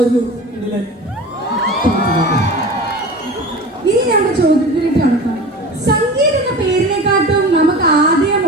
കിടിലൻ. ഇനി നമ്മുടെ ചോദ്യത്തിലേക്ക് കടക്കാം. സംഗീത് എന്ന പേരിനെക്കാട്ടും നമുക്ക് ആദ്യം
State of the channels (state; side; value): normal; both; correlation 0.35